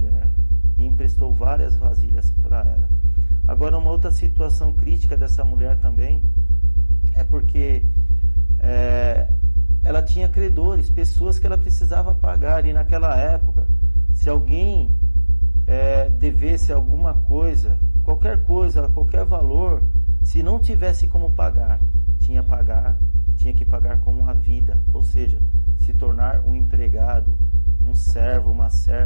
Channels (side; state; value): both; inverted; correlation -1.00